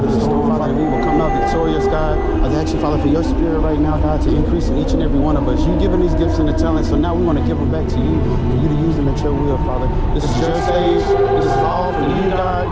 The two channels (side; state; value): both; identical; correlation 1.00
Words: the storm, Father, that we will come out victorious, God. I ask you, Father, for your spirit right now, God, to increase in each and every one of us. You've given these gifts and the talents, so now we want to give them back to you, for you to use them at your will, Father. This is your stage. This is all for you, God.